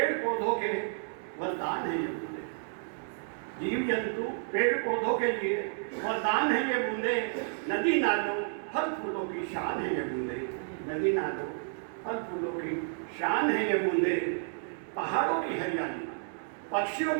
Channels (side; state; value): left; silent; digital silence